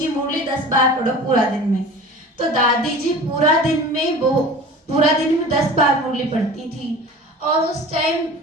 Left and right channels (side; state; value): both; normal; correlation 0.39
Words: मुरली 10 बार पढ़ो पूरा दिन में। तो दादी जी पूरा दिन में 10 बार मुरली पढ़ती थी, और उस टाइम